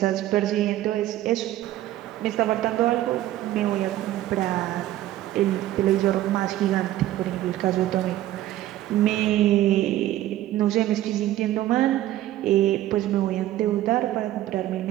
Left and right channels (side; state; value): left; quieter; 14.1 dB